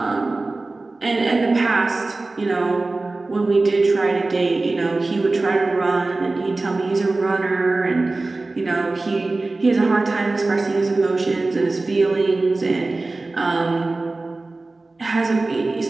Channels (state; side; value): quieter; left; 3.3 dB